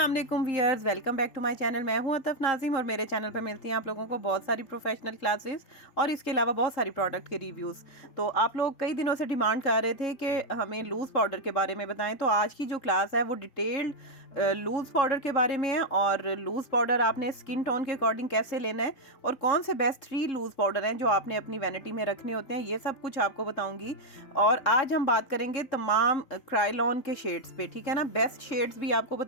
वालेकुम viewers, welcome back to my channel. मैं हूं अतफ नाज़िम और मेरे चैनल पर मिलती हैं आप लोगों को बहुत सारी प्रोफेशनल क्लासेस और इसके अलावा बहुत सारी प्रोडक्ट के रिव्यूज़। तो आप लोग कई दिनों से डिमांड कर रहे थे कि हमें लूज़ पाउडर के बारे में बताएं, तो आज की जो क्लास है वो डिटेल्ड लूज़ पाउडर के बारे में है। और लूज़ पाउडर आपने स्किन टोन के अकॉर्डिंग कैसे लेना है और कौन से बेस्ट 3 लूज़ पाउडर हैं जो आपने अपनी वैनिटी में रखने होते हैं, ये सब कुछ आपको बताऊंगी। और आज हम बात करेंगे तमाम क्राइलॉन के शेड्स पे, ठीक है ना। बेस्ट शेड्स भी आपको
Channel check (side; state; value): right; late; 3.7 ms